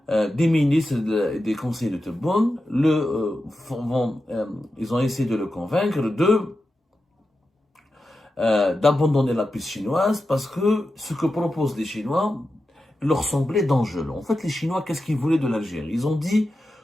des ministres et des conseillers de Tebboune ils ont essayé de le convaincre d'abandonner la piste chinoise parce que ce que proposent les Chinois leur semblait dangereux. En fait, les Chinois, qu'est-ce qu'ils voulaient de l'Algérie? Ils ont dit,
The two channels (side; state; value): both; normal; correlation 0.91